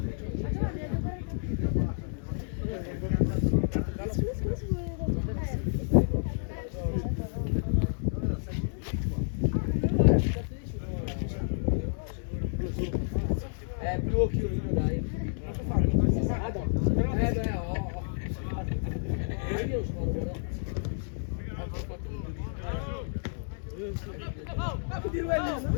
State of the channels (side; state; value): right; silent; digital silence